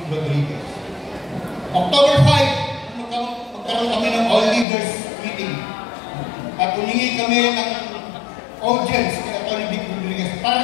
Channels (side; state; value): right; drops out; at 4.7 s